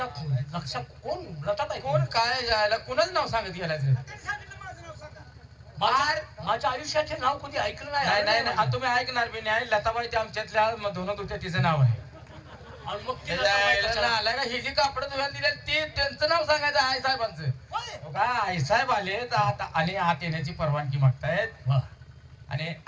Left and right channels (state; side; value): identical; both; correlation 1.00